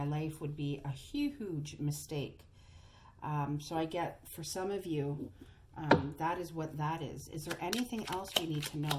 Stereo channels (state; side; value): identical; both; correlation 1.00